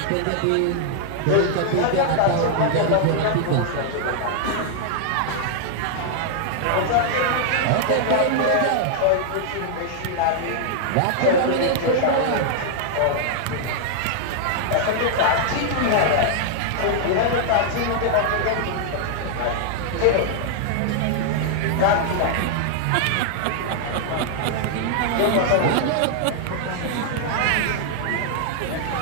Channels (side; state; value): both; different; correlation -0.01